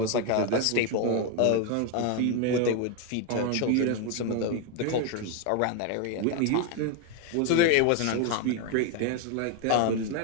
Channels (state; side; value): different; both; correlation 0.01